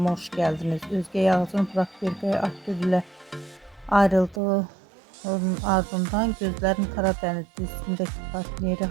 hoş geldiniz. Özge Yağız'ın Burak Birgay Akgül ile ayrıldığı ardından Gözlerin Karadeniz dizisindeki partneri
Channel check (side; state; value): left; drops out; at 4.4 s